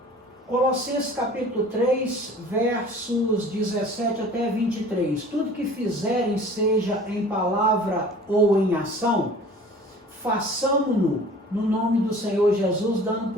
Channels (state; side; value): normal; both; correlation 0.46